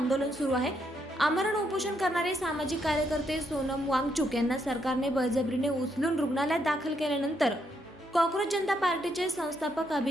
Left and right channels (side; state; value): both; normal; correlation 0.76